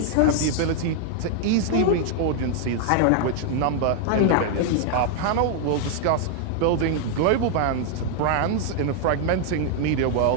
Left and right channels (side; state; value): both; different; correlation 0.00